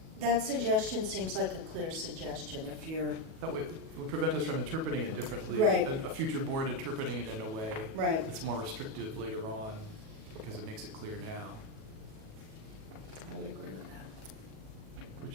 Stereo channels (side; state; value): left; late; 37 ms